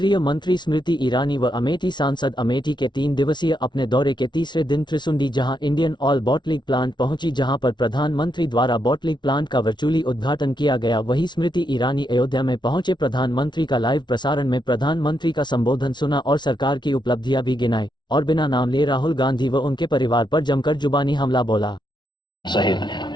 मंत्री स्मृति ईरानी व अमेठी सांसद अमेठी के 3 दिवसीय अपने दौरे के तीसरे दिन त्रिसुंडी जहां इंडियन ऑयल बॉटलिंग प्लांट पहुंची, जहां पर प्रधानमंत्री द्वारा बॉटलिंग प्लांट का वर्चुअली उद्घाटन किया गया। वहीं स्मृति ईरानी अयोध्या में पहुंचे प्रधानमंत्री का लाइव प्रसारण में प्रधानमंत्री का संबोधन सुना और सरकार की उपलब्धियां भी गिनाई और बिना नाम लिए राहुल गांधी व उनके परिवार पर जमकर जुबानी हमला बोला।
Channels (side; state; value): right; late; 0.21 ms